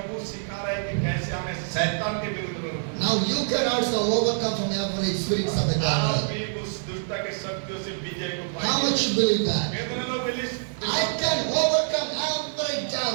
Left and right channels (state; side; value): silent; left; digital silence